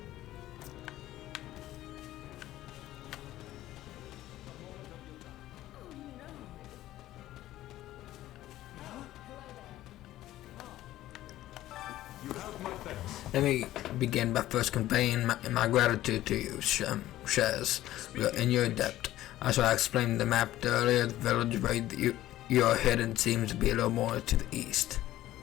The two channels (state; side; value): quieter; right; 14.7 dB